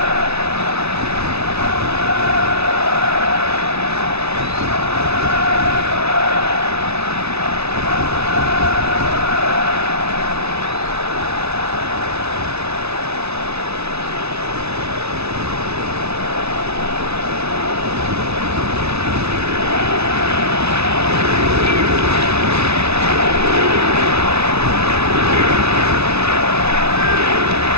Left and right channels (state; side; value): late; left; 0.80 ms